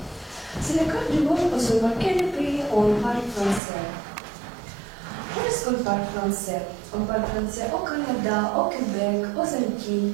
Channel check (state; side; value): drops out; left; at 3.6 s